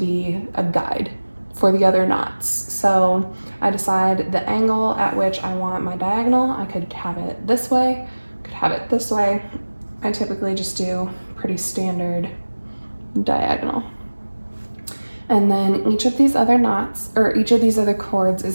a guide for the other knots. So I decide the angle at which I want my diagonal. I could have it this way, could have it this way. I typically just do pretty standard diagonal. And then each of these other knots, or each of these other cords,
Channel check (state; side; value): inverted; both; correlation -1.00